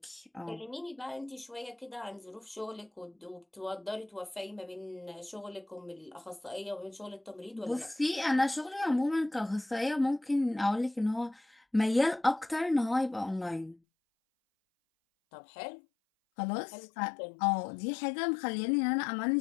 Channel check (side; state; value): right; drops out; at 13.8 s